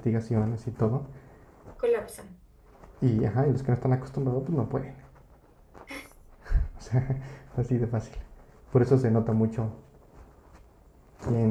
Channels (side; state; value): both; identical; correlation 1.00